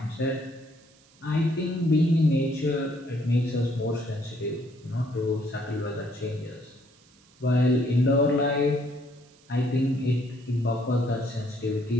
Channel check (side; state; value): right; noise; hiss, 30 dB below the sound